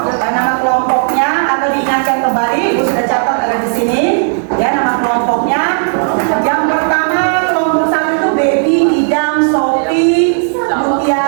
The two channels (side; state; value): left; silent; digital silence